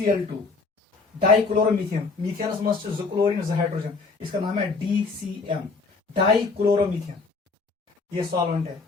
डाइक्लोरोमीथेन। मीथेनस मस्ट जो क्लोरीन जो हाइड्रोजन, इसका नाम है DCM, डाइक्लोरोमीथेन। ये सॉल्वेंट है।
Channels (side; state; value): right; quieter; 4.1 dB